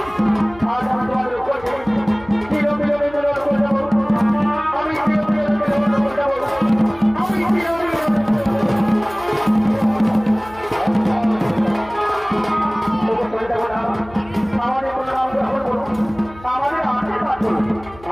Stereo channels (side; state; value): left; noise; hum, 21 dB below the sound